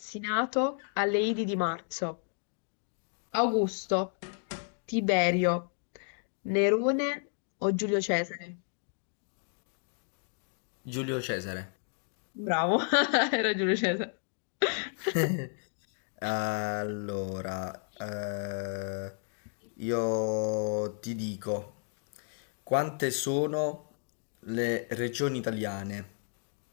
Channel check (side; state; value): right; silent; 56 dB below the other